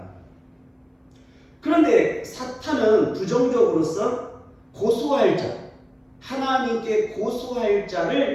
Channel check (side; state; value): both; identical; correlation 1.00